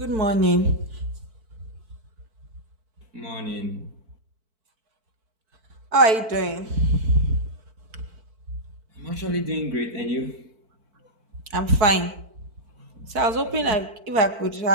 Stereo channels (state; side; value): late; left; 4.5 ms